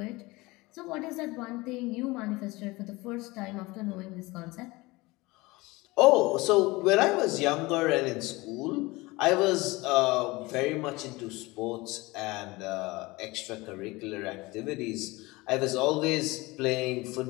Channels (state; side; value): quieter; right; 22.1 dB